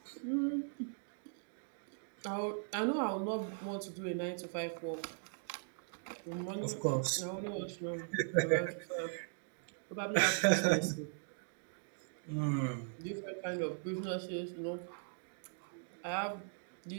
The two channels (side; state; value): left; silent; digital silence